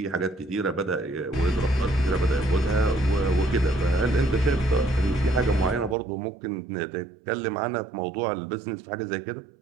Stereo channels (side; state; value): left; drops out; at 6.0 s